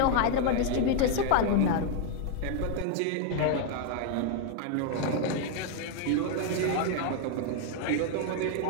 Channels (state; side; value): different; both; correlation 0.00